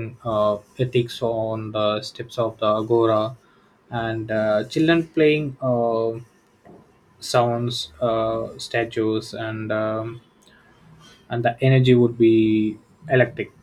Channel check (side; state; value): both; identical; correlation 1.00